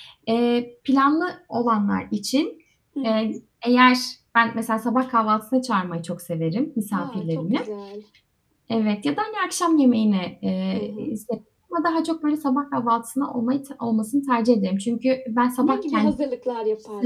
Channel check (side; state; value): both; identical; correlation 1.00